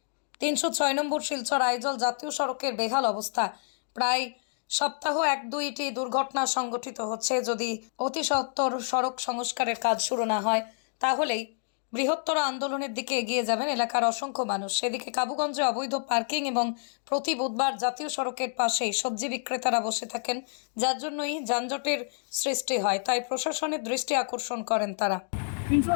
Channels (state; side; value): silent; right; digital silence